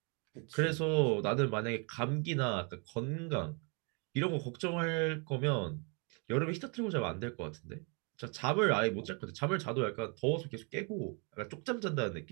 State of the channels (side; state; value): left; quieter; 34.8 dB